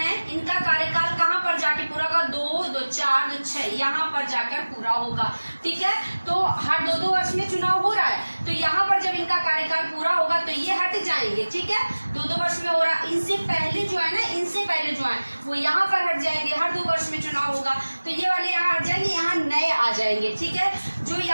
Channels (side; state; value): both; inverted; correlation -1.00